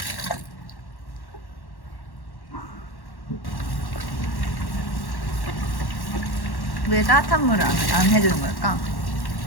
왜 따뜻한 물을 안 해주는 걸까?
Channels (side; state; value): right; late; 1.1 ms